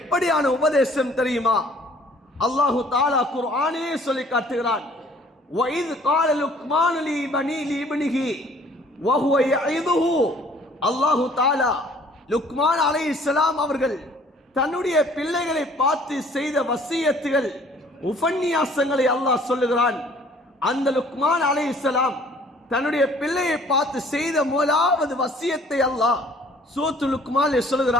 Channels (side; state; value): both; normal; correlation 0.56